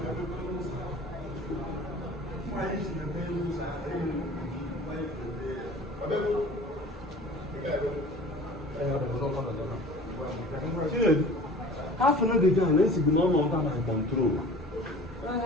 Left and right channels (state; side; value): normal; both; correlation 0.43